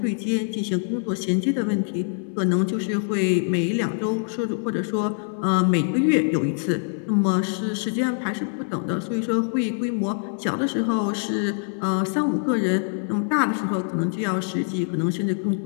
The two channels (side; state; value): right; silent; 62 dB below the other